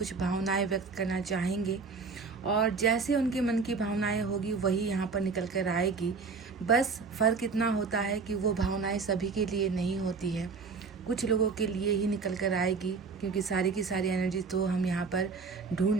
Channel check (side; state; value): left; quieter; 4.8 dB